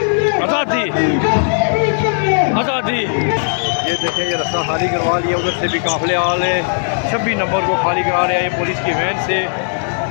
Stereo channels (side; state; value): right; silent; digital silence